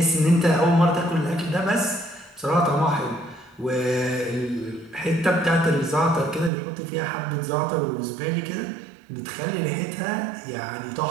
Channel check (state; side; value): drops out; left; at 6.5 s